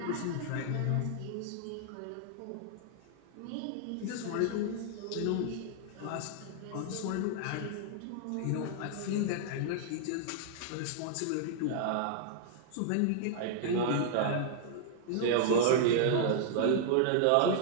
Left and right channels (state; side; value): different; both; correlation -0.01